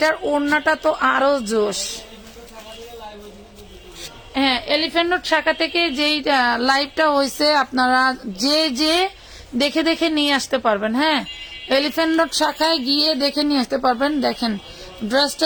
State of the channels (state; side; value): identical; both; correlation 1.00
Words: ওড়নাটা তো আরো জোশ। হ্যাঁ, এলিফ্যান্ট রোড শাখা থেকে যেই লাইভটা হয়েছে আপনারা যে দেখে দেখে নিয়ে আসতে পারবেন। হ্যাঁ, এলিফ্যান্ট রোড শাখায় গিয়ে দেখে নিয়ে আসতে পারবেন। দেখেন